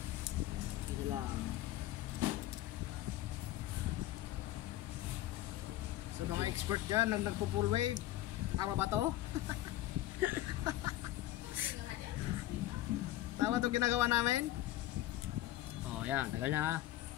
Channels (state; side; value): quieter; right; 14.8 dB